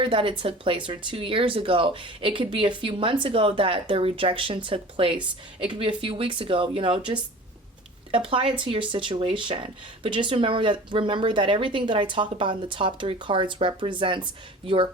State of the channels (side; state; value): both; normal; correlation 0.41